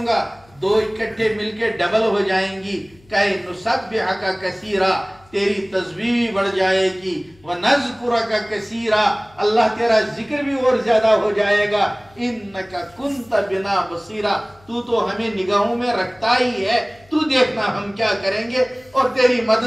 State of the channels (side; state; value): left; noise; hum, 29 dB below the sound